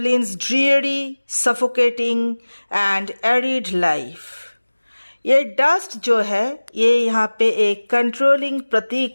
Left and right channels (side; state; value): both; inverted; correlation -1.00